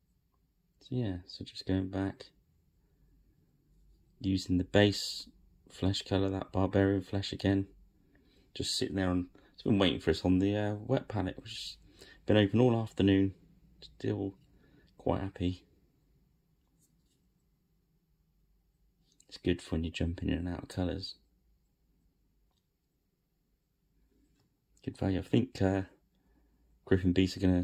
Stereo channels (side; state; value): both; identical; correlation 1.00